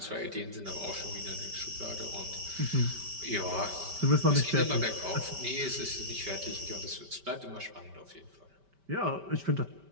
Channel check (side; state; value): left; late; 5.1 ms